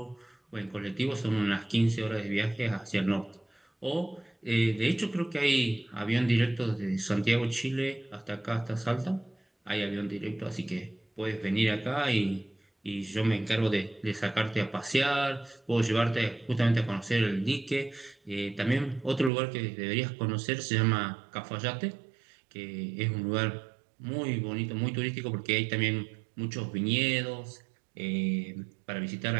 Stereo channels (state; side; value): drops out; left; at 19.3 s